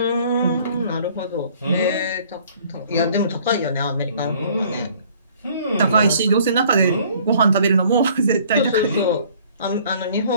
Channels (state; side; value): inverted; both; correlation -0.56